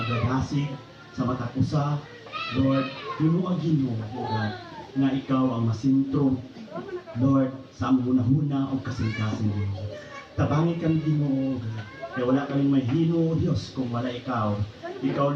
sa mata ko sa, Lord, hinuagin mo, O God, nga ikaw ang masintro, Lord, sa among hunahuna o kasing-kasing mo. Tabangi kami din mo, O God, kaya wala kaming may hino, Diyos, kung wala ikaw.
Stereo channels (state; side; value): identical; both; correlation 1.00